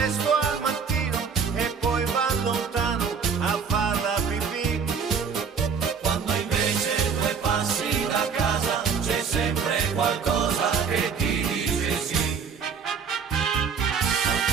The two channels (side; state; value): left; quieter; 6.1 dB